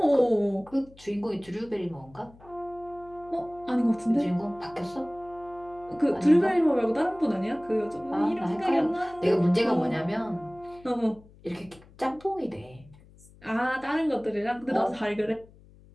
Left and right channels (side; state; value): left; noise; hum, 24 dB below the sound